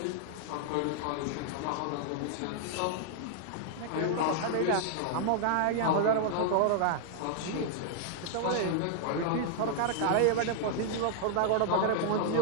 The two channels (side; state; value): both; different; correlation -0.01